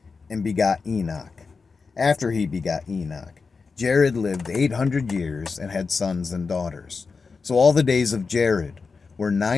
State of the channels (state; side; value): quieter; right; 4.7 dB